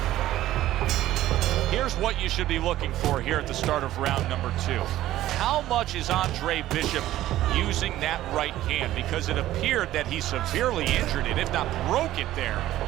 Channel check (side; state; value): left; quieter; 14.3 dB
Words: Here's what you should be looking for here at the start of round number 2. How much is Andre Bishop using that right hand? Because it appeared that he severely injured it, if not broke it there